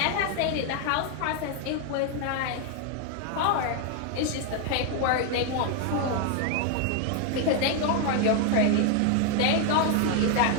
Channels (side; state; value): both; different; correlation 0.00